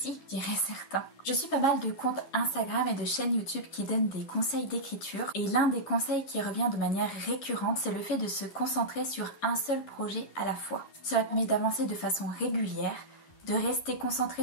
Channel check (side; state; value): right; late; 11 ms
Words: diraient certains. Je suis pas mal de comptes Instagram et de chaînes YouTube qui donnent des conseils d'écriture et l'un des conseils qui revient de manière récurrente c'est le fait de se concentrer sur un seul projet à la fois. Cela permet d'avancer de façon régulière, de rester